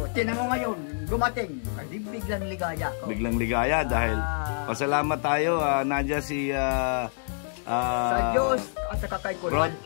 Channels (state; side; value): silent; right; digital silence